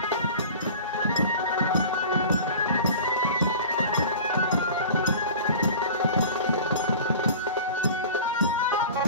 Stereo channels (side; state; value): both; inverted; correlation -0.39